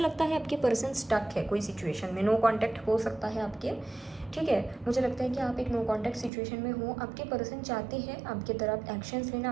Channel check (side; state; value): left; drops out; at 6.3 s